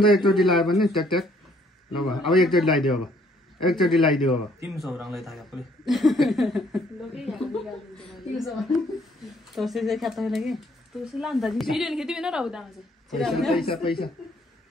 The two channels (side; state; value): both; normal; correlation 0.64